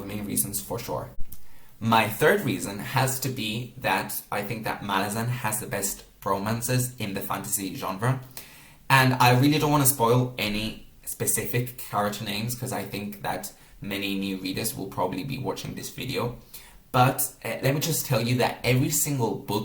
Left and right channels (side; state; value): both; identical; correlation 1.00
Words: main reasons for sure. My third reason has to be that I think that Malazan has the best romances in the fantasy genre, and I really don't want to spoil any specific character names because I think that many new readers will probably be watching this video. But let me just tell you that every single